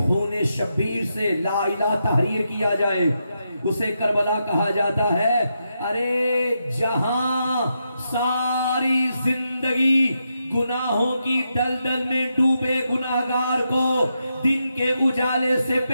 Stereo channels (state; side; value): inverted; both; correlation -0.84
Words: خون شبیر سے لا الہ تحریر کیا جائے اسے کربلا کہا جاتا ہے. ارے جہاں ساری زندگی گناہوں کی دلدل میں ڈوبے گناہگار کو دن کے اجالے سے